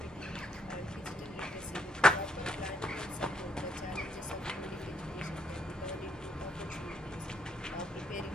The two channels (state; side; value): normal; both; correlation 0.74